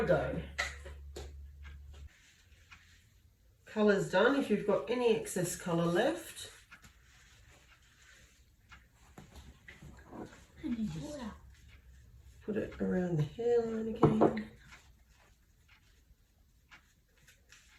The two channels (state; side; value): identical; both; correlation 1.00